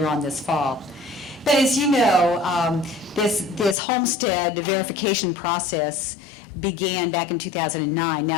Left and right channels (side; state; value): right; drops out; at 3.8 s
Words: on this fall. But as you know, this homestead verification process began back in 2009.